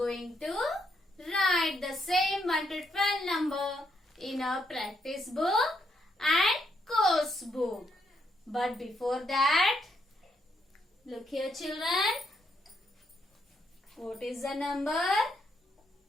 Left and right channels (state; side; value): normal; both; correlation 0.76